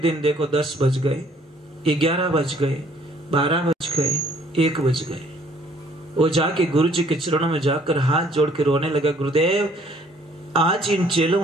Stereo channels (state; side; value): normal; both; correlation 0.61